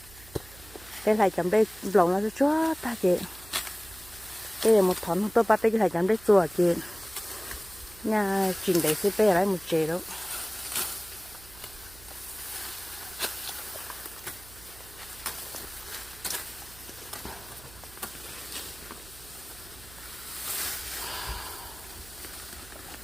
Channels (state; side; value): noise; right; hum, 20 dB below the sound